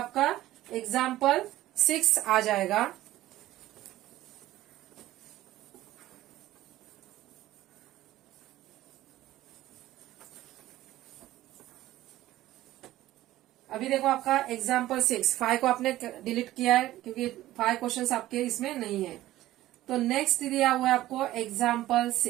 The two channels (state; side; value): quieter; left; 15.3 dB